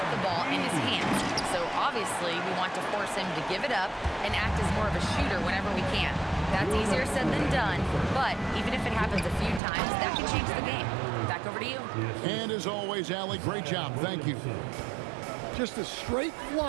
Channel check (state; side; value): drops out; left; at 9.6 s